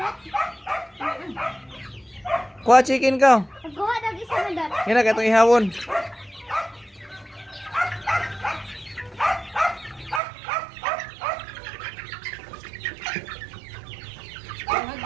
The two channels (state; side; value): drops out; left; at 10.2 s